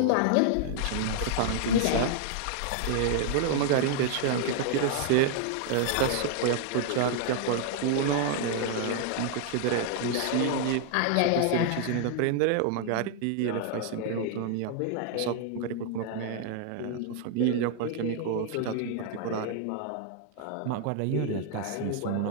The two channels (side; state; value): both; different; correlation 0.00